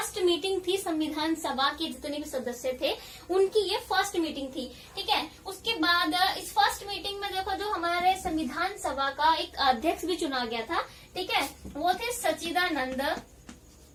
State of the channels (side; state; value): both; identical; correlation 1.00